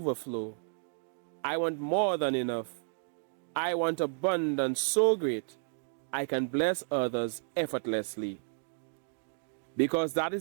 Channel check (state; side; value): silent; left; digital silence